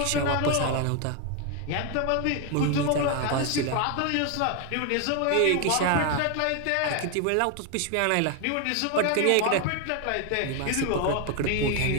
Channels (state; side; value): different; both; correlation 0.01